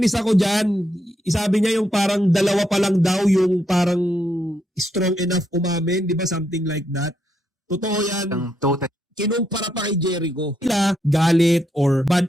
ako dyan. Isabi niya yung parang dalawa pa lang daw yung parang strong enough umamin. Di ba? Something like that. Totoo yan. Ang total Kinumpara pa kay Jericho. Sila galit or bad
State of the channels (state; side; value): normal; both; correlation 0.79